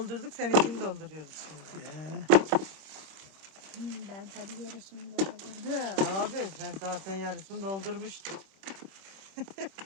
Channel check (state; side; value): late; left; 26 ms